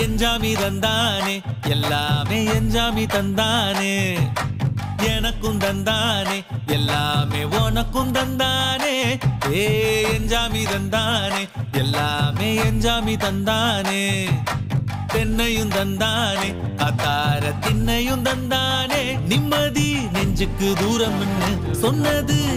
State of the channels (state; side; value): identical; both; correlation 1.00